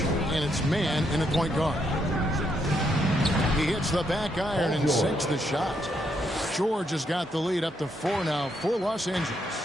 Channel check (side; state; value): both; normal; correlation 0.77